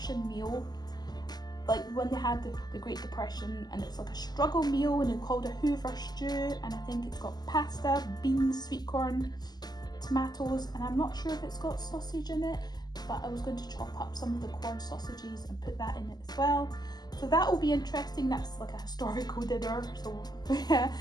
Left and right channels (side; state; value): right; late; 0.20 ms